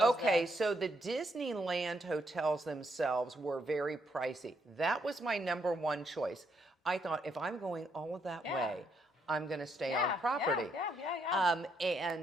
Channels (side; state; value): both; normal; correlation 0.75